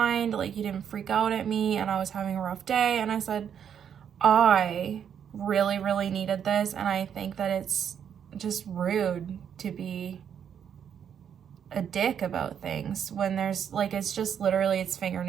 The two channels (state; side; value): quieter; left; 8.4 dB